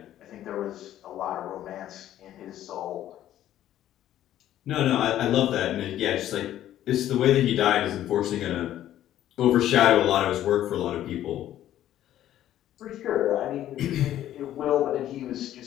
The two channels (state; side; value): quieter; right; 12.4 dB